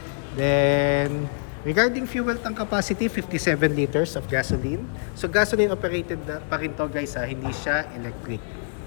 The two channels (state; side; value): silent; right; digital silence